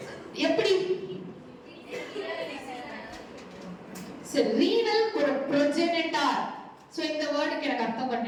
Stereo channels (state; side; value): identical; both; correlation 1.00